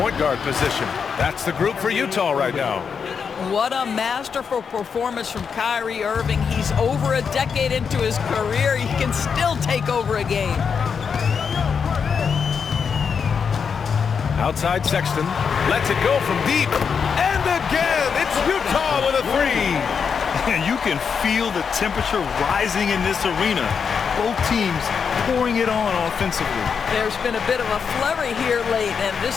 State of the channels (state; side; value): quieter; right; 6.3 dB